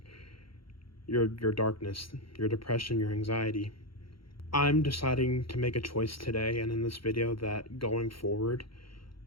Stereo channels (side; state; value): right; late; 0.74 ms